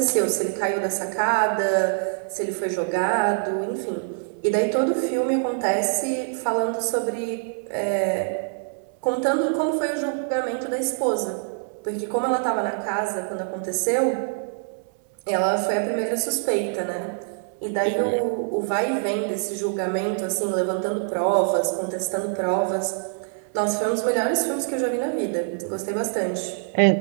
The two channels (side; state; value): left; silent; 62 dB below the other